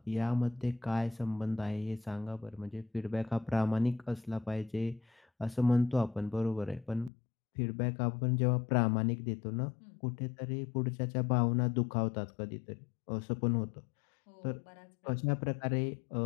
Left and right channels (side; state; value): right; drops out; at 7.1 s